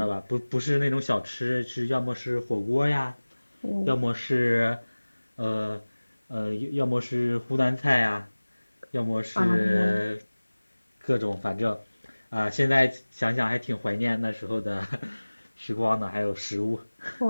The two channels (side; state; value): both; inverted; correlation -1.00